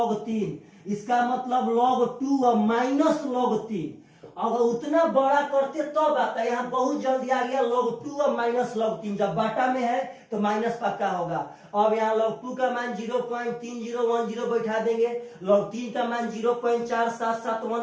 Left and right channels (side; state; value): both; identical; correlation 1.00